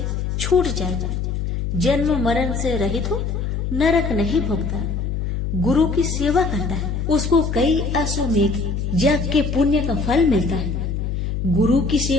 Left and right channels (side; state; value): left; noise; hum, 2 dB below the sound